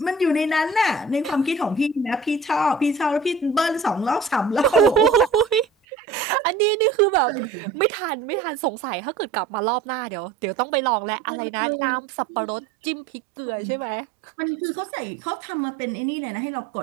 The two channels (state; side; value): drops out; left; at 5.7 s